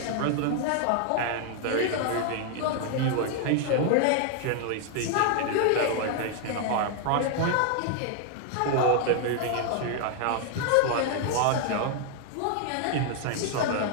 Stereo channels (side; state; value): both; different; correlation 0.00